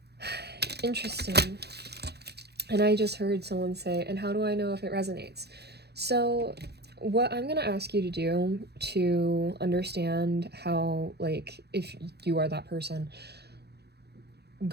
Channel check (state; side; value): late; left; 0.48 ms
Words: Interesting. And I just heard someone say, and how do I know if it resonates? So what I'm going to ask you to do to understand how, like, if you are that person,